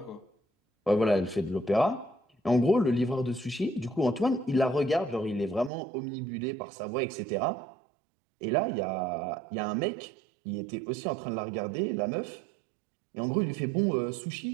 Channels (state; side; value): drops out; left; at 5.7 s